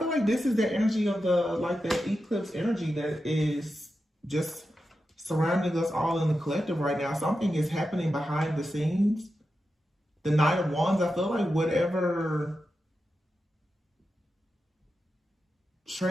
like this is the energy of the eclipse energy that is just surrounding us all in the collective right now. Something is happening behind the scenes. The Knight of Wands, I feel like whatever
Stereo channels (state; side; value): normal; both; correlation 0.90